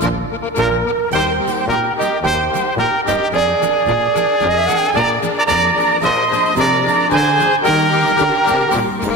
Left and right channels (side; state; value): both; normal; correlation 0.41